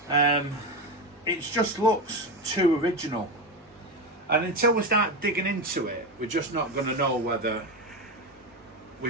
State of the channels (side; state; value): both; normal; correlation 0.17